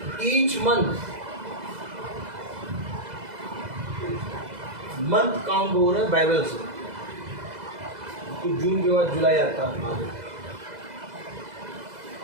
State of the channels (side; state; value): left; late; 2.0 ms